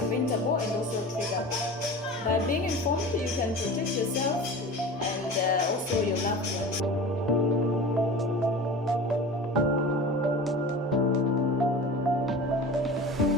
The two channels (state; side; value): normal; both; correlation 0.34